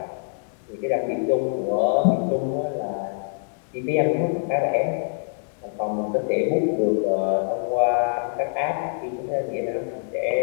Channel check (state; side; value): silent; right; digital silence